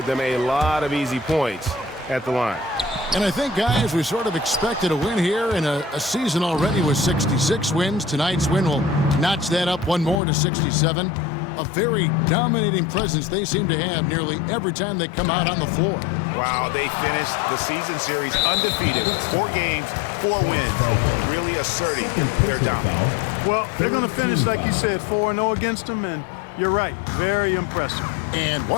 them a lot of easy points at the line. And I think, guys, we sort of expected a win here in a season already with 66 wins. Tonight's win will notch that up 1 more to 67. A very dominating presence they seem to have nearly every time they come out on the floor. Wow, they finished the season series undefeated. 4 games, 4 wins, really asserting their dominance. Well, they're going to finish, like you said, 4-0 against them, and you're right, very impressive. And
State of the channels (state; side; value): drops out; right; at 10.2 s